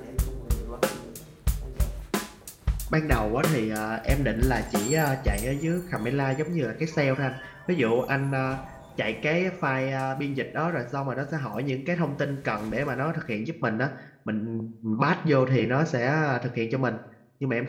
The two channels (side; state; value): both; identical; correlation 1.00